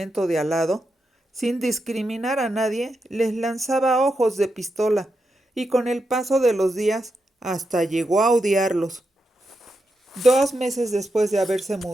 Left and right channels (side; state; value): both; normal; correlation 0.86